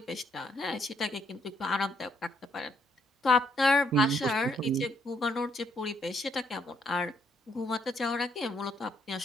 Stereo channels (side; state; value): both; normal; correlation 0.71